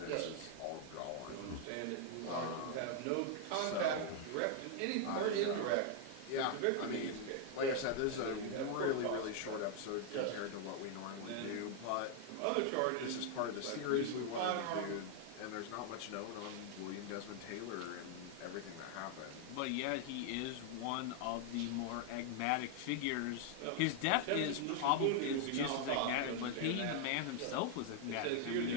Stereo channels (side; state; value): both; different; correlation 0.00